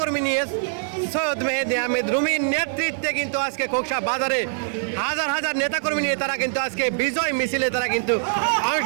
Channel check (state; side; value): silent; left; digital silence